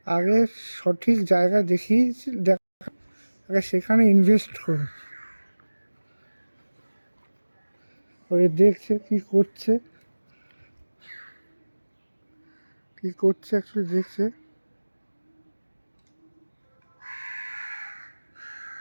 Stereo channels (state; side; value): inverted; both; correlation -1.00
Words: আগে সঠিক জায়গা দেখিয়েছি, আগে সেখানে ইনভেস্ট করুন। ওই দেখছে কি করছে, কি করছে অ্যাকচুয়ালি দেখছে,